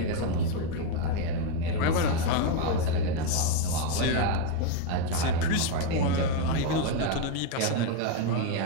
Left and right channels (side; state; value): both; different; correlation 0.02